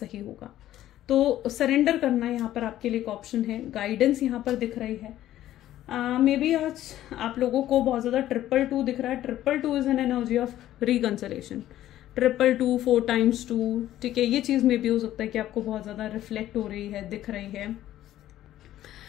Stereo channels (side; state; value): right; quieter; 13.2 dB